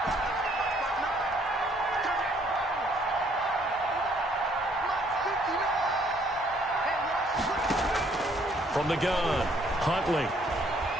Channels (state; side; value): normal; both; correlation 0.64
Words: From the gun, Huntley.